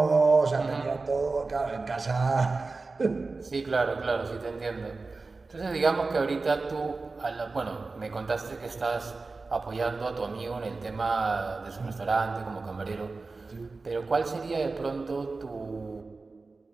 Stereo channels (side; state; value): left; quieter; 3.8 dB